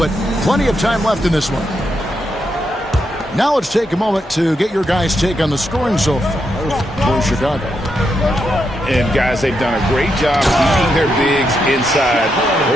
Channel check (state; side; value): normal; both; correlation 0.82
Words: plenty of time left in this one. Now let's take a moment to get your guys' take on the scoring so far for Chicago. And, guys, they've done a great job keeping their bigs inside.